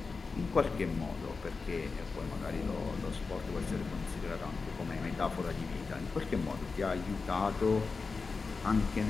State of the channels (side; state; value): right; quieter; 4.4 dB